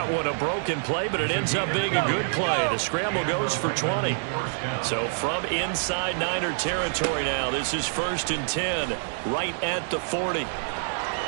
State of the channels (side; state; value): left; silent; 60 dB below the other